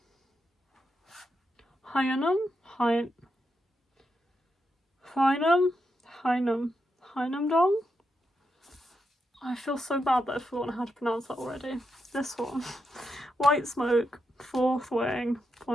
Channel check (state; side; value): normal; both; correlation 0.84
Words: Huynam-dong? I feel so bad that I've forgotten how to pronounce that already. This one. White Smoke, Fourth Wing,